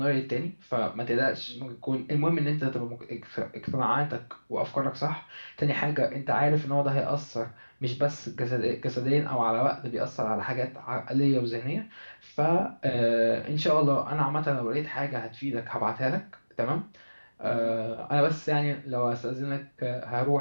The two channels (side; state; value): both; inverted; correlation -1.00